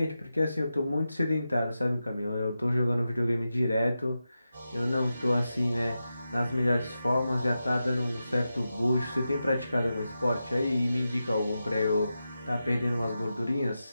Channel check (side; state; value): both; inverted; correlation -0.91